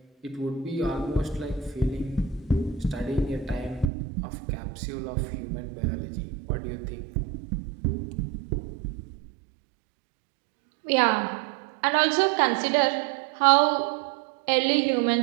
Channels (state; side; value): drops out; left; at 3.9 s